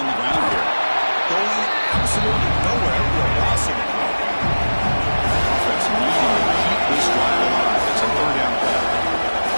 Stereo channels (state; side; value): inverted; both; correlation -1.00